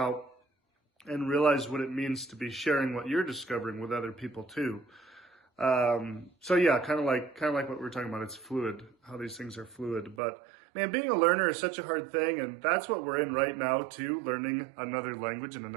and realize what it means to be sharing what you're discovering with other people too. So yeah, kind of like what we were talking about. It's fluid, how these things are fluid. But man, being a learner is such a hard thing, and that's what we're in right now too, learning another language and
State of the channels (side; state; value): left; drops out; at 10.2 s